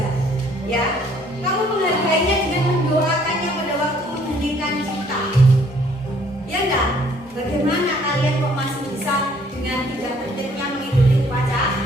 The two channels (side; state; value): both; normal; correlation 0.61